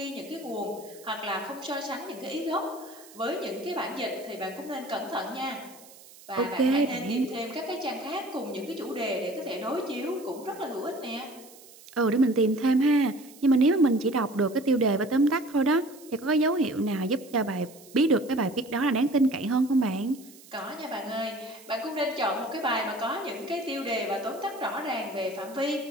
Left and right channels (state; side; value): noise; right; hiss, 21 dB below the sound